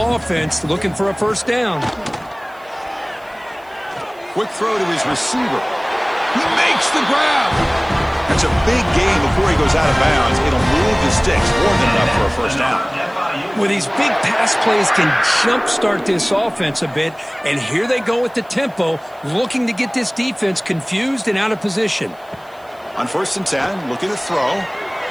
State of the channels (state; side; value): noise; right; hiss, 30 dB below the sound